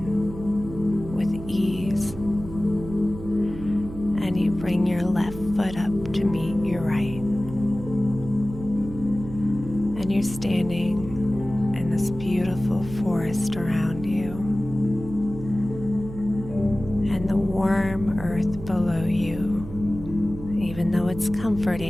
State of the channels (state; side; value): noise; right; hum, 12 dB below the sound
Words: with ease, and you bring your left foot up to meet your right. And you're standing in this beautiful forest around you, and the warm earth below you even though it's